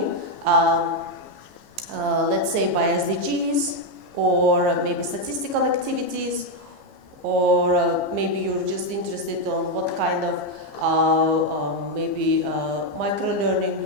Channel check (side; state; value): left; late; 15 ms